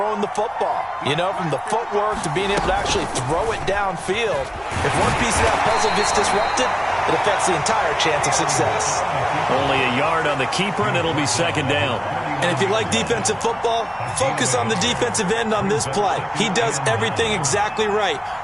the football. You know, from the footwork to being able to actually throw it downfield. If one piece of that puzzle gets disrupted, it affects the entire chance of success. Only a yard on the keeper, and it'll be 2nd down. And if you like defensive football, focus on the defensive end on this play. He does everything exactly right.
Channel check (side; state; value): both; identical; correlation 1.00